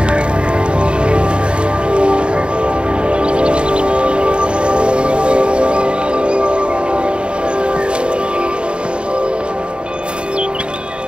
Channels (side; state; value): left; late; 0.054 ms